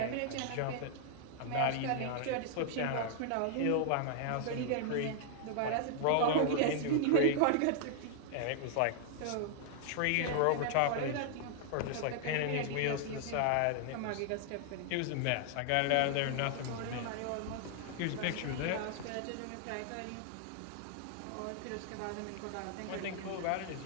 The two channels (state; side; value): different; both; correlation 0.00